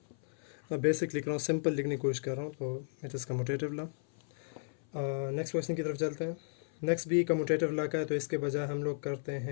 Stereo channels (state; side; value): silent; right; 55 dB below the other